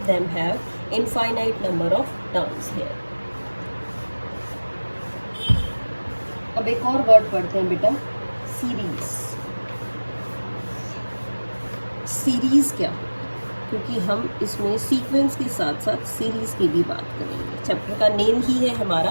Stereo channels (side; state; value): both; inverted; correlation -1.00